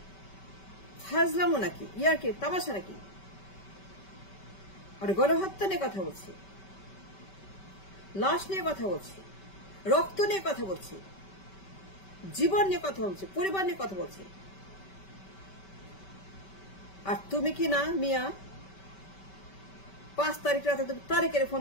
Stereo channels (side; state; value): right; late; 5.2 ms